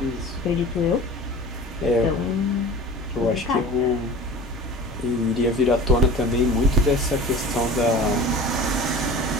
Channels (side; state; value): both; normal; correlation 0.39